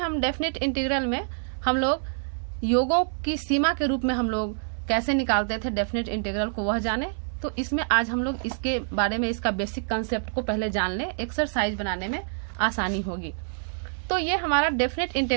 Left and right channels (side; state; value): left; silent; 60 dB below the other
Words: डेफिनेट इंटीग्रल में हम लोग योगों की सीमा के रूप में हम लोग कैसे निकालते थे डेफिनेट इंटीग्रल को, वह जाने। तो इसमें आज हम लोग इसके बारे में, इसका बेसिक कंसेप्ट को पहले जान लें, एक्सरसाइज बनाने में आसानी होगी। तो ये हमारा डेफिनेट